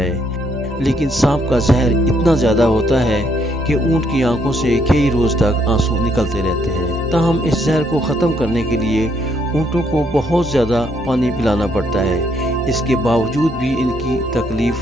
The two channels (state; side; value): noise; right; hum, 21 dB below the sound